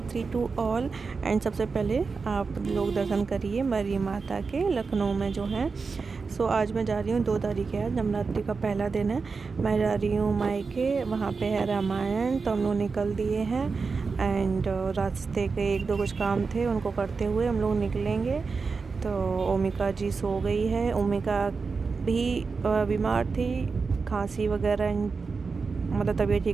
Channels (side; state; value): left; quieter; 4.7 dB